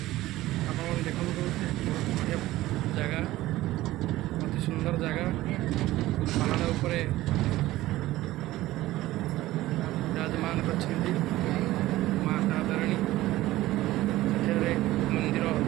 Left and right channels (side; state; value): left; quieter; 16.6 dB